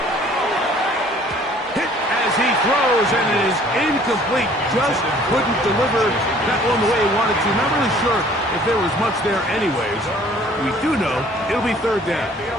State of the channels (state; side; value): normal; both; correlation 0.55